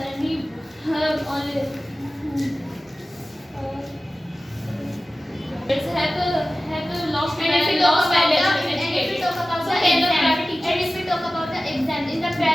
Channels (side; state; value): both; normal; correlation 0.96